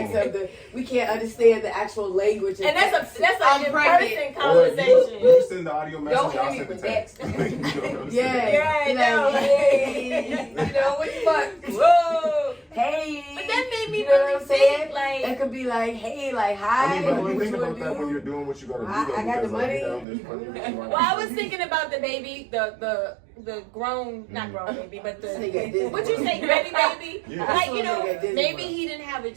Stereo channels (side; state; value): left; drops out; at 20.1 s